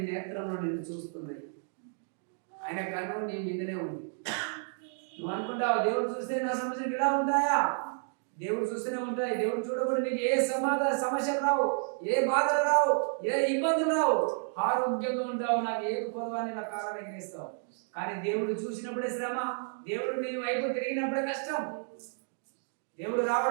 నేత్రంలో నిన్ను చూస్తున్నాయి. ఆయన కన్ను నీ మీదనే ఉంది. నువ్వు అనుకుంటావు దేవుడు చూస్తే నా సమస్యలు ఇలా ఉంటాయా? దేవుడు చూస్తూనే ఉంటాయి. దేవుడు చూడకుండా నీకు ఏ సమస్యలు రావు, ఏ బాధలు రావు, ఏ ఇబ్బందులు రావు. ఆరోగ్యంగా ఉంటావు, నాకు ఏ పొదవాన్ని నా కాలాన్ని ఎగిరిస్తావు. కానీ దేవుడు చూసినప్పుడే శ్రమ, దేవుడు నీ వైపు తిరిగినప్పుడే కష్టం. దేవుడు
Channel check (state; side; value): silent; left; 57 dB below the other